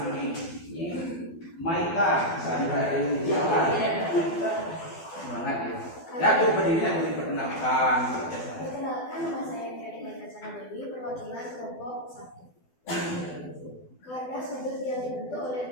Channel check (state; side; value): late; right; 12 ms